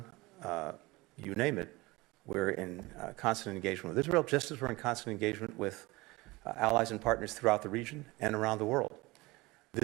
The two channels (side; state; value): left; quieter; 22.0 dB